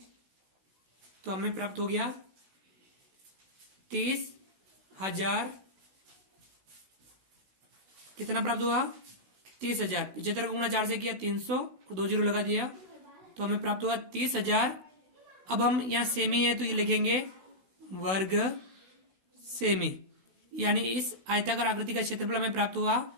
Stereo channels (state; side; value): late; left; 16 ms